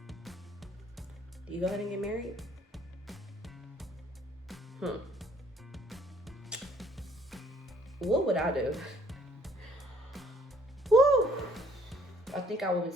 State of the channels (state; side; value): normal; both; correlation 0.61